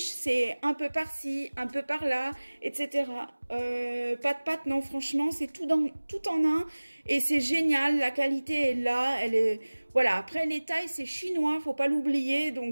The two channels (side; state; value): both; inverted; correlation -1.00